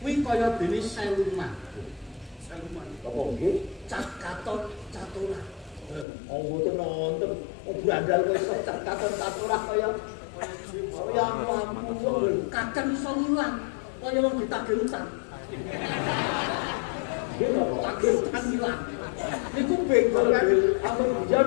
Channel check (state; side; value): drops out; right; at 6.1 s